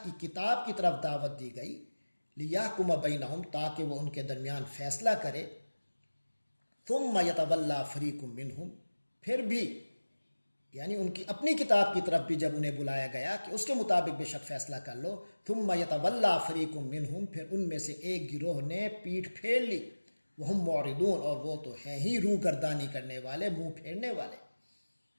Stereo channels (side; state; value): both; inverted; correlation -1.00